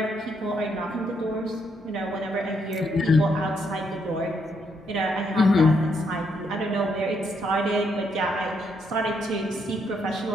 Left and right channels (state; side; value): normal; both; correlation 0.75